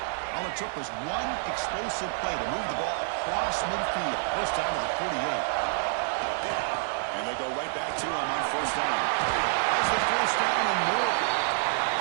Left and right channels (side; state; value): left; silent; digital silence